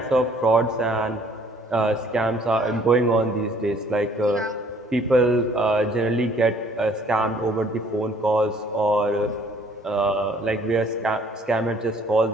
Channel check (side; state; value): both; normal; correlation 0.59